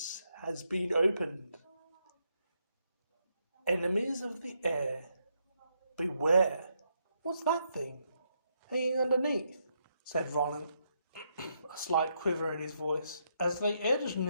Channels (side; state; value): both; inverted; correlation -0.78